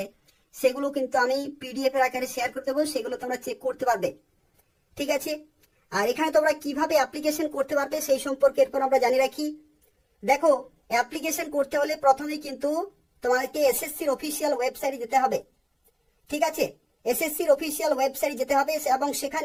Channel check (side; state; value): both; identical; correlation 1.00